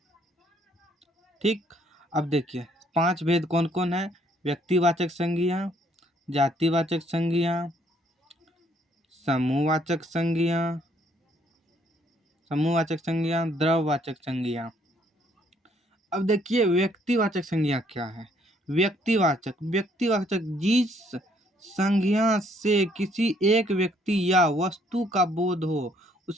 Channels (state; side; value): normal; both; correlation 0.66